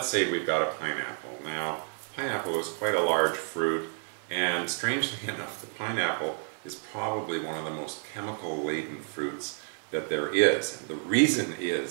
say we've got a pineapple. Now, pineapple is quite a large fruit, and strangely enough, the pineapple is probably one of the most chemical-laden fruits that there is. And the reason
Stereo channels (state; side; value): silent; left; 56 dB below the other